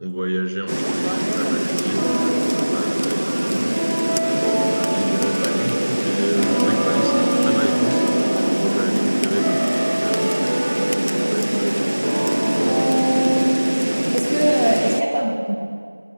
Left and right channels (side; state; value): both; inverted; correlation -1.00